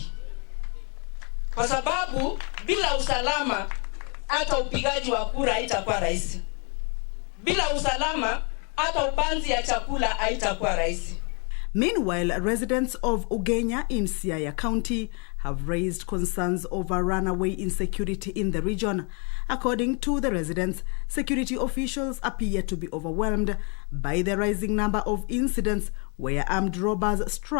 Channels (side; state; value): right; quieter; 36.1 dB